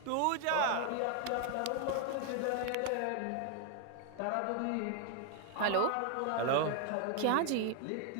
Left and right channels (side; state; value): both; different; correlation 0.00